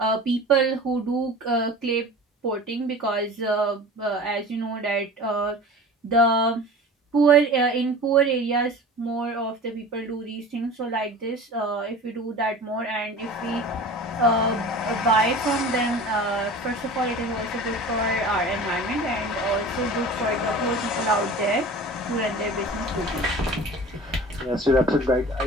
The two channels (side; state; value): both; normal; correlation 0.38